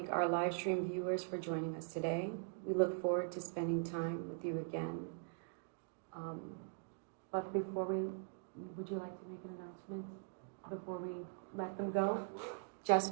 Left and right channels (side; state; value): left; silent; digital silence